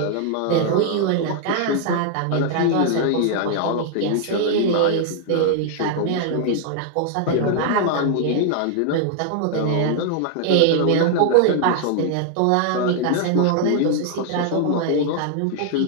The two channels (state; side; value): different; both; correlation 0.00